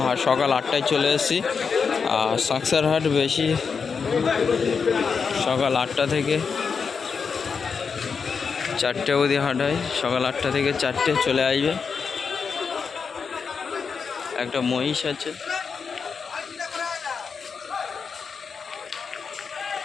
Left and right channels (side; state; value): right; quieter; 5.7 dB